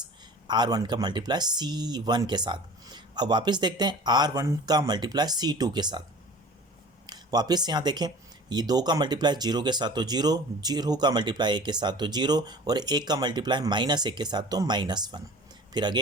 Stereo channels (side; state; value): both; normal; correlation 0.42